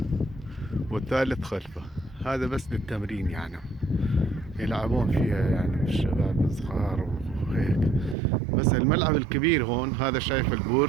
والثالث خلفه. هذا بس للتمرين، يعني يلعبون فيها يعني الشباب الصغار وهيك. بس الملعب الكبير هون، هذا شايف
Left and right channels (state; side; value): drops out; left; at 8.2 s